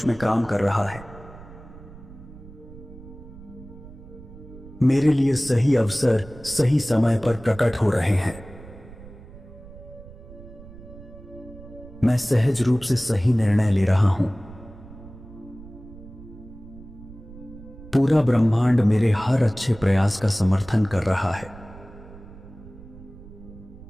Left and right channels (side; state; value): right; noise; rumble, 18 dB below the sound